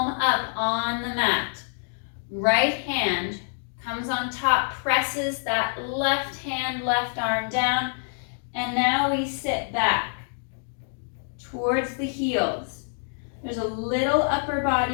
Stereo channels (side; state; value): right; silent; digital silence